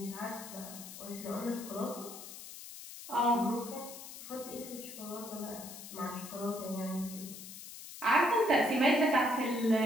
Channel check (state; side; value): noise; left; hiss, 12 dB below the sound